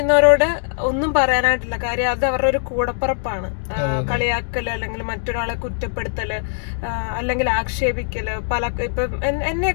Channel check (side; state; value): right; silent; digital silence